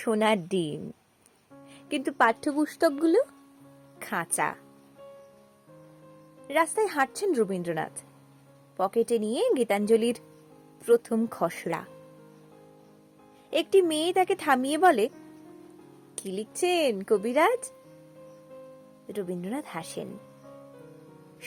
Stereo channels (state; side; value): identical; both; correlation 1.00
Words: ডিম, কিন্তু পাঠ্যপুস্তকগুলো খাঁচা। রাস্তায় হাঁটছেন রবীন্দ্রনাথ, পকেটে নিয়ে গীতাঞ্জলির প্রথম খসড়া। একটি মেয়ে তাকে থামিয়ে বলে, কি লিখছেন কবিরাজ? রবীন্দ্রনাথ হাসেন।